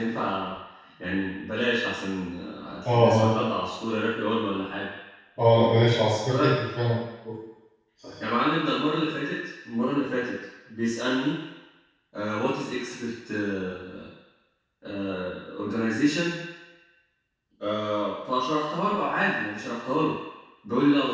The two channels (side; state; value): both; identical; correlation 1.00